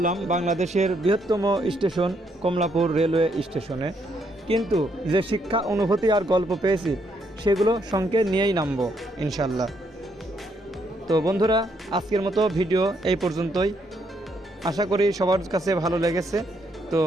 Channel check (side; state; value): both; normal; correlation 0.74